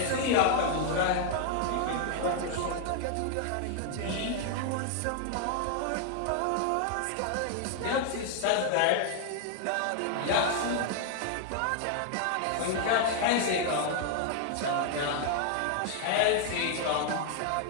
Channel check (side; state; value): both; different; correlation 0.00